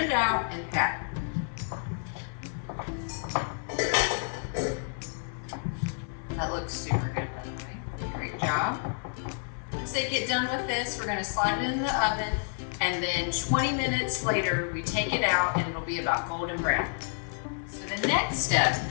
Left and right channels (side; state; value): right; silent; 58 dB below the other